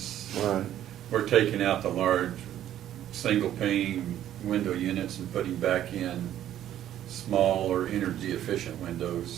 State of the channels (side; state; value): left; quieter; 11.7 dB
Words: Right. We're taking out the large single pane window units and putting back in smaller energy efficient